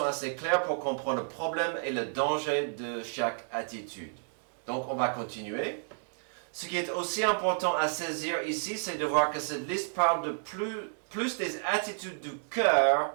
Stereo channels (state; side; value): silent; left; digital silence